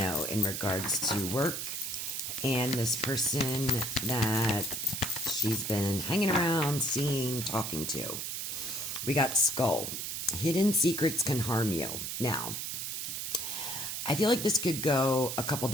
in regards to work and this person that she's been hanging around, seeing, talking to? We got Skull. Hidden secrets can harm you. Now, I feel like this could go a couple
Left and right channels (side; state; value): right; noise; hiss, 4 dB below the sound